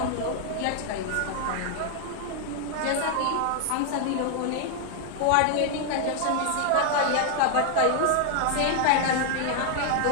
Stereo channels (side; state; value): both; different; correlation 0.00